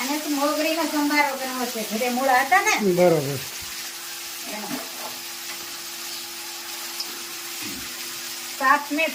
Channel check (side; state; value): both; identical; correlation 1.00